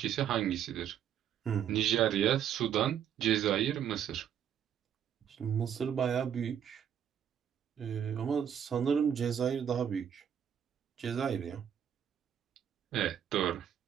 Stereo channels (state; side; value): quieter; left; 9.1 dB